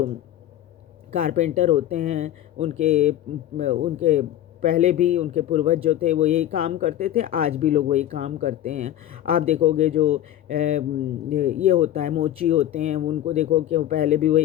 कारपेंटर होते हैं, उनके पहले भी उनके पूर्वज जो थे वो यही काम करते थे, आज भी लोग वही काम करते हैं। आप देखोगे जो ये होता है मोची होते हैं, उनको देखो कि वो पहले भी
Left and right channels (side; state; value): right; quieter; 12.3 dB